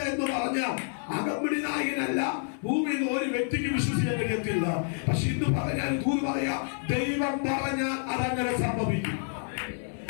എന്ന് പറഞ്ഞാൽ അകമ്പടി നായകനല്ല, ഭൂമിയിൽ ഒരു വ്യക്തിക്ക് വിശ്വസിക്കാൻ കഴിയത്തില്ല. പക്ഷെ ഇന്ന് പറഞ്ഞാൽ ദൂത് പറയാ, ദൈവം പറഞ്ഞാൽ അതങ്ങനെ സംഭവിക്കും.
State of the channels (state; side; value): silent; right; 59 dB below the other